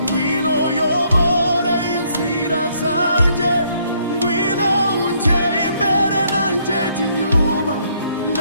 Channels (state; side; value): inverted; both; correlation -0.69